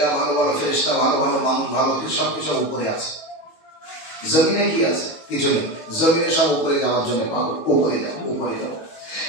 ভালো ভালো ফেরেশতা, ভালো ভালো মানুষ, ভালো সব কিছু উপরে আছে। জমিনে কি আছে? কিছু নেই। জমিনে সব উপরে যাওয়ার জন্য পাবো, উপরে যাবো।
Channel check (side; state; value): right; late; 18 ms